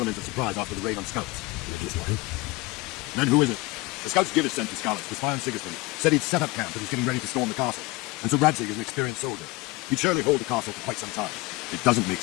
of surprise after the raid on Skalitz. Then who is it? The scouts Givis sent to Skalitz to spy on Sigismund. Said he'd set up camp and he's getting ready to storm the castle. And so Radzig is an experienced soldier. He'd surely hold the castle for quite some time. It doesn't make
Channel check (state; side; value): quieter; right; 22.4 dB